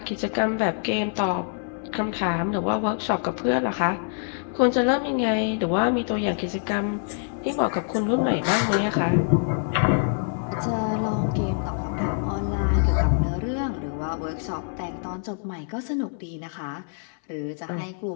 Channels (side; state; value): right; silent; 62 dB below the other